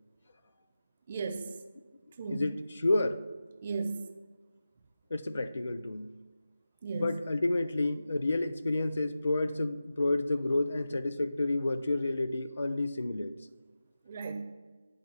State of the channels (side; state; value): both; inverted; correlation -0.93